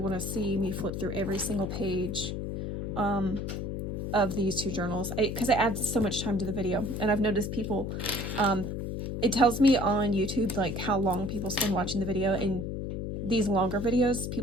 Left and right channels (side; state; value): left; noise; hum, 4 dB below the sound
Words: to see me flip through every single page of these 2 journals, because it adds so much time to the video. And I've noticed people, it tells me on YouTube like how long people spend watching the video, and these longer videos